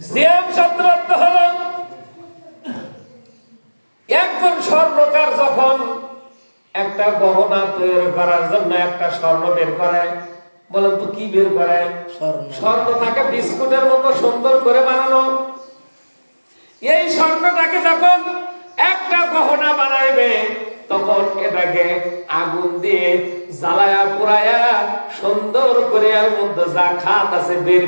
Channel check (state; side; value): inverted; both; correlation -1.00